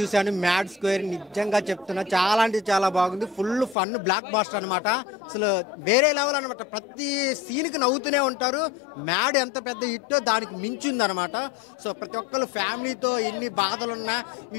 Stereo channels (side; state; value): right; drops out; at 3.8 s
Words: మ్యాడ్ స్క్వేర్, నిజంగా చెప్తున్నా చాలా అంటే చాలా బాగుంది. ఫుల్ ఫన్ బ్లాక్ బాస్టర్ అనమాట. అసలు వేరే లెవెల్ అనమాట. ప్రతి సీన్కి నవ్వుతూనే ఉంటారు. మ్యాడ్ ఎంత పెద్ద హిట్టో దానికి మించింది అనమాట. సో ప్రతి ఒక్కరు ఫ్యామిలీతో ఎన్ని బాధలున్నా ఈ